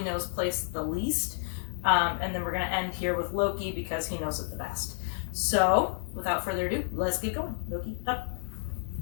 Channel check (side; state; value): right; silent; 58 dB below the other